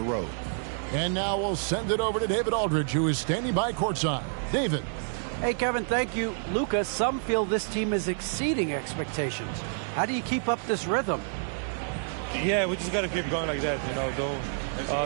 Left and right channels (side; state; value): left; silent; digital silence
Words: road. And now we'll send it over to David Aldridge, who is standing by courtside. David. Hey, Kevin, thank you. Luka, some feel this team is exceeding expectations. How do you keep up this rhythm? Yeah, we just got to keep going like that. You